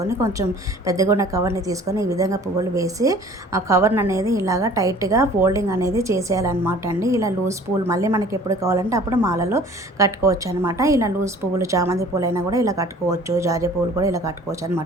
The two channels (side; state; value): both; normal; correlation 0.49